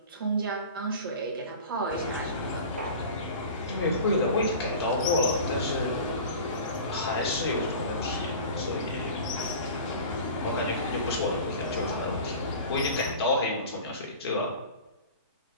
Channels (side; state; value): both; inverted; correlation -0.37